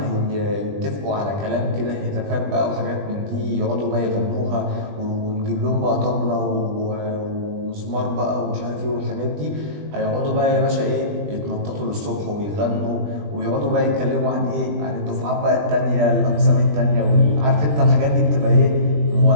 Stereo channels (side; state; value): left; late; 20 ms